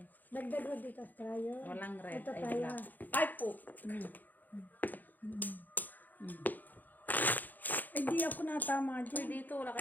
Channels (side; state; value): right; late; 0.085 ms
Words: Dagdag ko dito sa tryo. walang red, Ito ay tayo. black. Ay po. Eh, di ako natama Uy, dyan. dito, wala